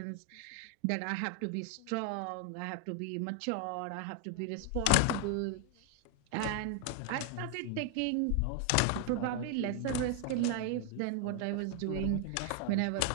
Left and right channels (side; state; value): both; different; correlation 0.00